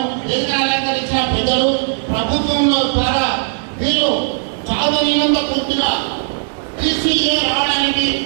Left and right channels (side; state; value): left; silent; digital silence